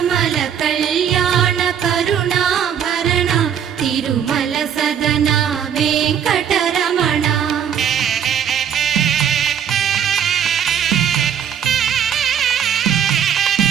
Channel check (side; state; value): left; quieter; 8.8 dB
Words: కళ్యాణ కరుణాభరణ తిరుమల సదన వెంకటరమణ